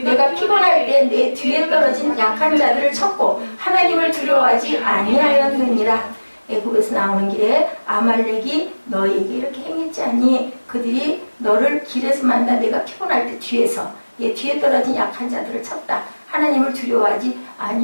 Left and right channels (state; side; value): inverted; both; correlation -1.00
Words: 피곤할 때 내 뒤에 떨어진 약한 자들을 쳤고 하나님을 두려워하지 아니하였느니라. 애굽에서 나오는 길에 아말렉이 너희에게 이렇게 행했지 않니? 그들이 너를 길에서 만나 내가 피곤할 때 뒤에 떨어진 약한 자들을 쳤다. 하나님을 두려워하지